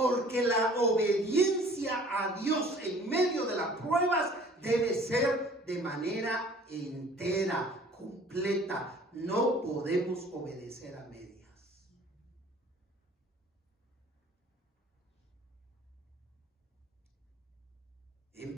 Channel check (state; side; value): normal; both; correlation 0.51